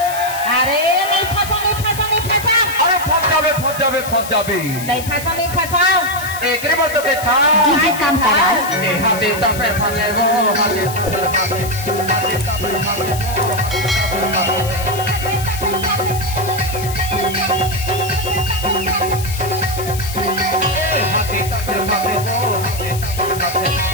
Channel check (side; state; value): left; noise; hiss, 11 dB below the sound